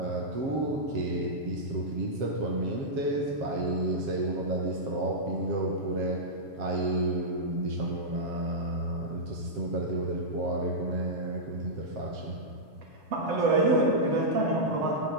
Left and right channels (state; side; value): late; left; 7.3 ms